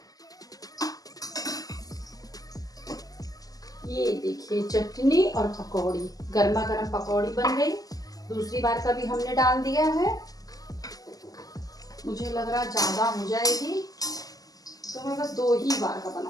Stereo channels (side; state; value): right; late; 0.17 ms